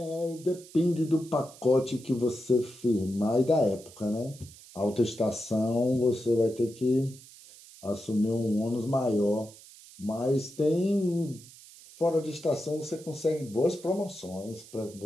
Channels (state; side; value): noise; right; hiss, 20 dB below the sound